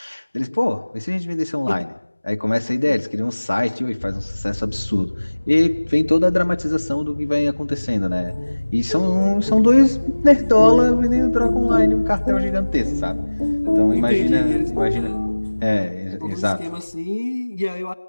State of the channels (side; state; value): both; inverted; correlation -1.00